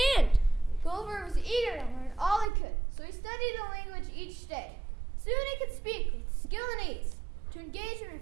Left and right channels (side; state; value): left; drops out; at 2.5 s